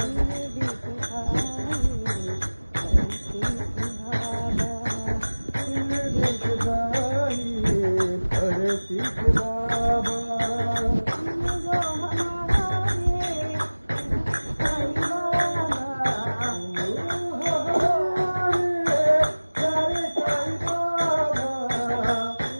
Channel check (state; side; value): inverted; both; correlation -1.00